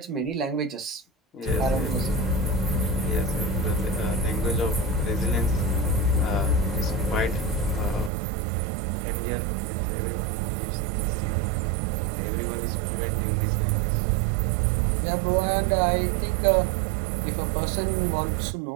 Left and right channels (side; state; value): left; drops out; at 8.1 s